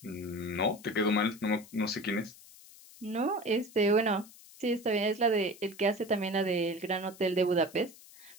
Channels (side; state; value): left; noise; hiss, 21 dB below the sound